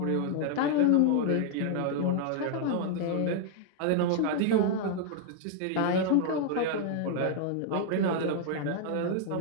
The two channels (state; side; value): different; both; correlation 0.00